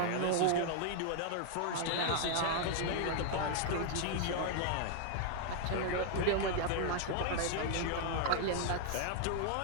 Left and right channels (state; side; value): different; both; correlation 0.00